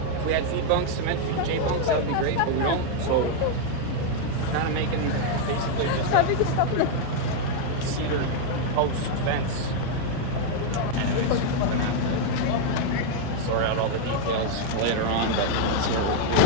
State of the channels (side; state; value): both; different; correlation 0.00